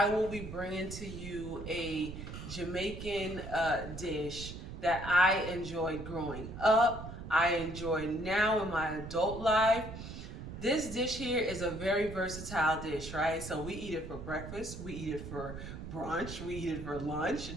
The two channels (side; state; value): right; noise; rumble, 9 dB below the sound